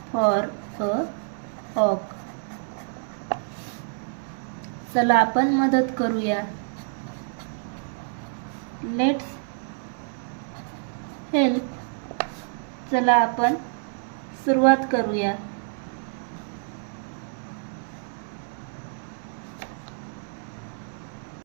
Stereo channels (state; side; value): silent; left; 60 dB below the other